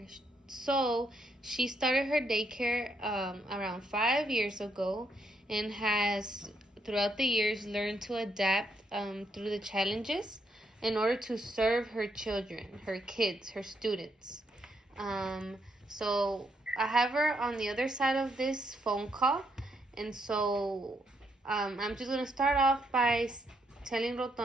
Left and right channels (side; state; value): both; normal; correlation 0.76